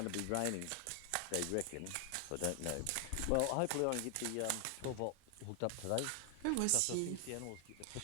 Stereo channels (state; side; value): different; both; correlation 0.00